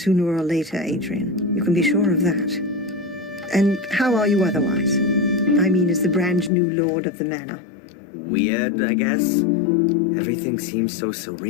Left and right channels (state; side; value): drops out; right; at 6.5 s